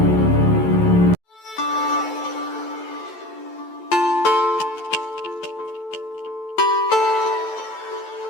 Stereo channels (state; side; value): late; right; 11 ms